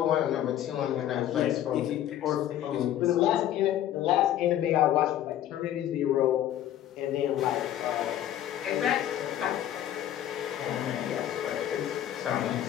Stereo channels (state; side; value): quieter; right; 11.8 dB